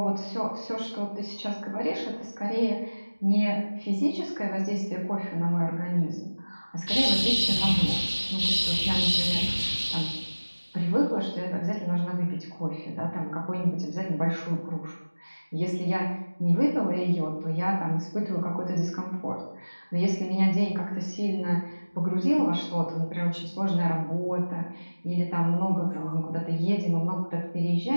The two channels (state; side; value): inverted; both; correlation -1.00